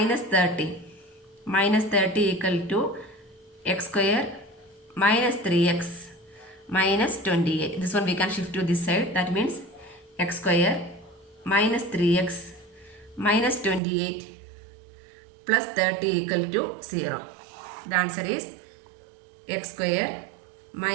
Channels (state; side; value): drops out; left; at 13.8 s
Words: 30. Minus 30 equal to x square minus 3x minus 28. This one we can shift to this side. That means x square minus 3x minus 28 plus 30 equal to 0. The answer is x square